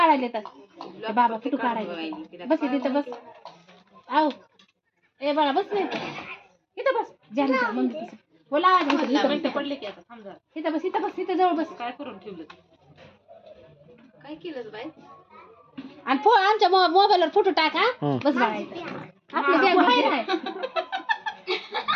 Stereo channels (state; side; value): identical; both; correlation 1.00